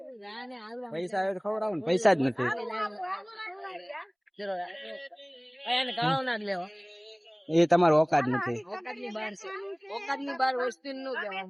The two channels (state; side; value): identical; both; correlation 1.00